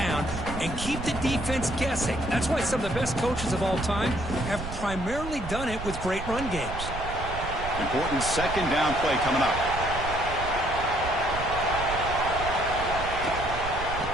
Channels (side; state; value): right; noise; rumble, 8 dB below the sound